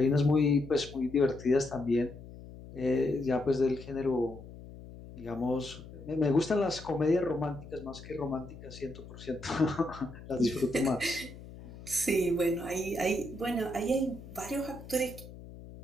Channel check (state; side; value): noise; left; hum, 15 dB below the sound